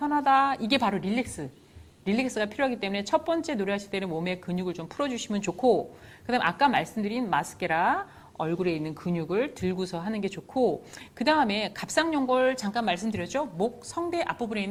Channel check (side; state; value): both; identical; correlation 1.00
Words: 이게 바로 릴렉스가 필요하기 때문에 첫 번째 노래하실 때는 몸의 근육을 좀 풀어주시면 좋고 그다음 아까 말씀드린 마스케라 얼굴에 있는 근육을 들고서 하는 게 좋고 그 다음에 갑상연골 잠깐 말씀드렸죠. 목, 성대 앞부분에